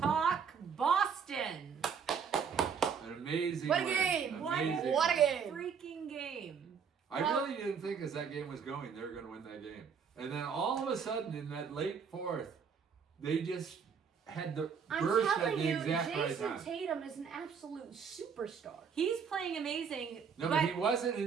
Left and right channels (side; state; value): left; quieter; 6.5 dB